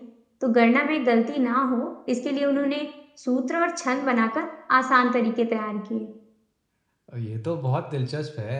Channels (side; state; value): both; identical; correlation 1.00